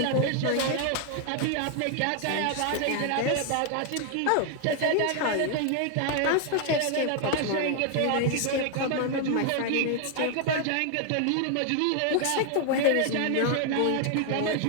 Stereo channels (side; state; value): both; different; correlation 0.00